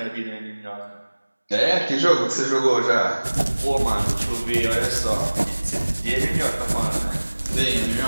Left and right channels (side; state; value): both; inverted; correlation -1.00